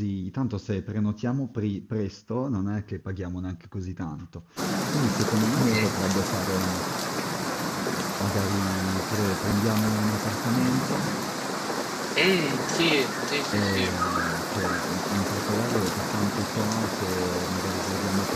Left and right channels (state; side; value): identical; both; correlation 1.00